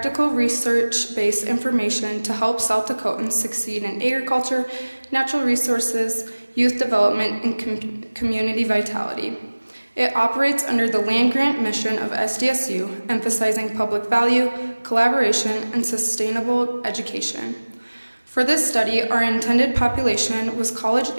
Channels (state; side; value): inverted; both; correlation -1.00